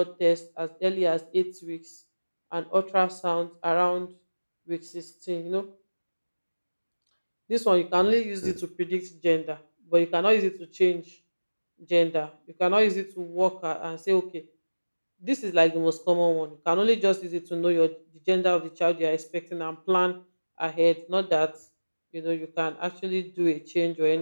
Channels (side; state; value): both; inverted; correlation -1.00